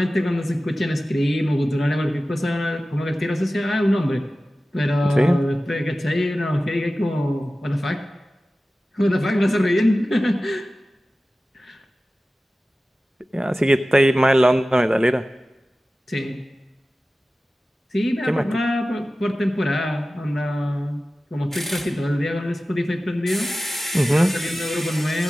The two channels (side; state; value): both; normal; correlation 0.96